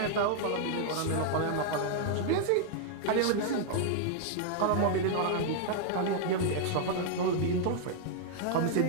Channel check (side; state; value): both; different; correlation 0.00